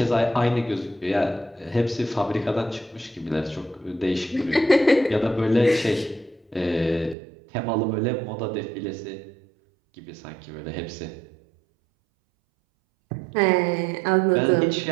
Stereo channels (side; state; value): left; drops out; at 7.2 s